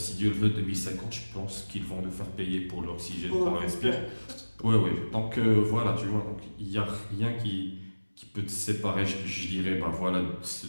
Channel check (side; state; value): both; inverted; correlation -1.00